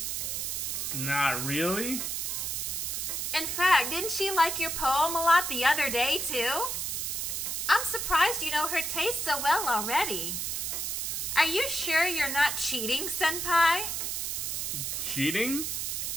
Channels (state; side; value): noise; right; hiss, 2 dB below the sound